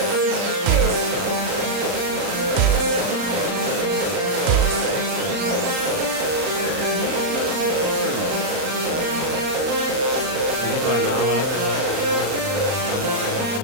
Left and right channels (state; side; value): late; left; 39 ms